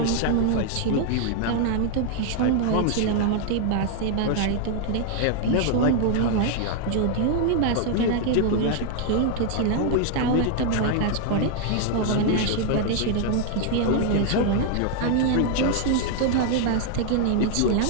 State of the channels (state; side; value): different; both; correlation 0.00